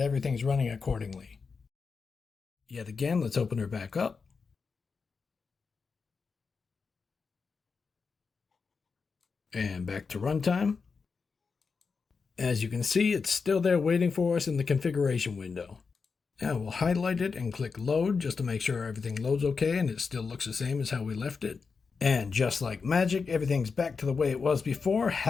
everything's running accordingly. Yet again, let's open her back up. And back to runtime. As you can see, it's still there waiting for us in the configuration window. Now we'll highlight it and click load just to make sure everything loads okay and it still looks the same as how we left it. And just like magic, everything's back to the way it was before.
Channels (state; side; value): quieter; right; 5.1 dB